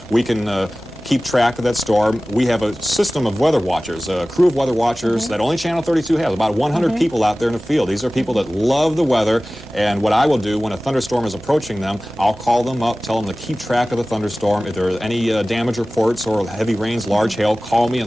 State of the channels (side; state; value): right; noise; hum, 21 dB below the sound